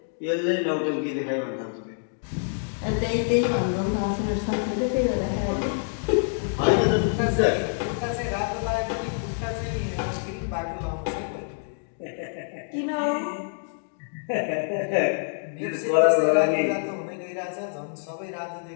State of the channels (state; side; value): silent; right; digital silence